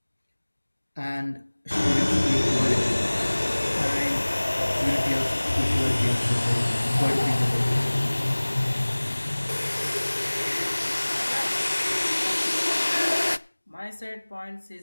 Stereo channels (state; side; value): inverted; both; correlation -1.00